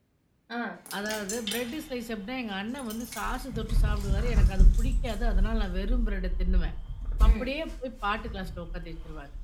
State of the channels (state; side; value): identical; both; correlation 1.00